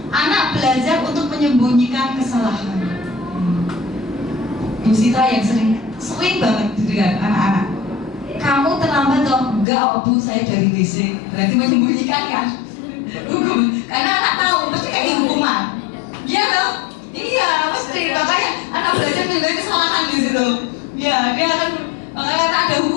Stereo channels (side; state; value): right; drops out; at 9.7 s